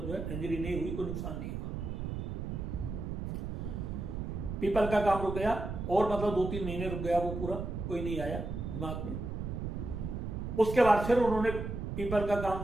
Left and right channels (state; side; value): noise; right; rumble, 5 dB below the sound